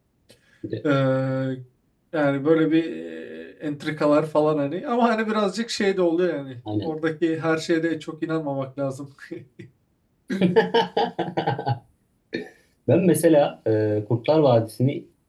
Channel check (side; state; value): both; identical; correlation 1.00